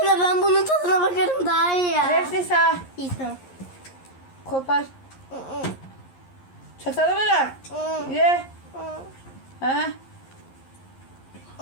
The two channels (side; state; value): right; late; 11 ms